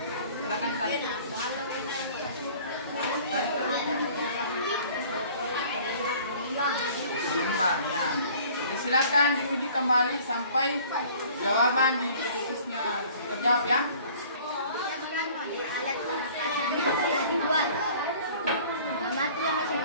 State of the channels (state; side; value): inverted; both; correlation -0.50